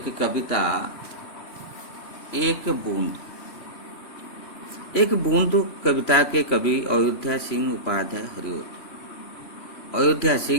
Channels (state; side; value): late; right; 3.0 ms